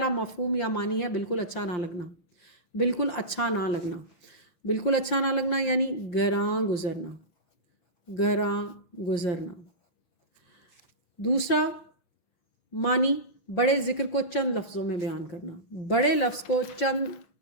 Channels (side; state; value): right; late; 5.7 ms